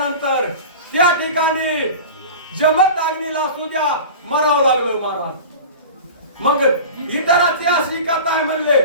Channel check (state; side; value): inverted; both; correlation -0.34